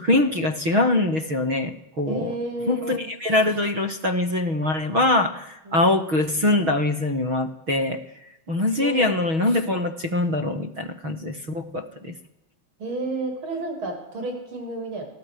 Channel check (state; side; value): late; left; 6.3 ms